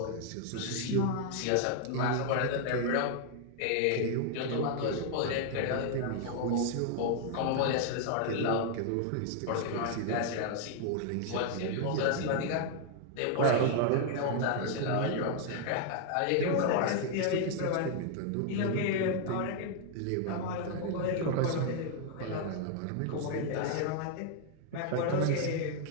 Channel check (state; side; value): different; both; correlation 0.00